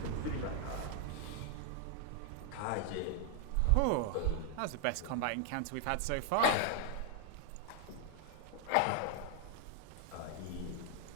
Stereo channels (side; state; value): both; different; correlation 0.00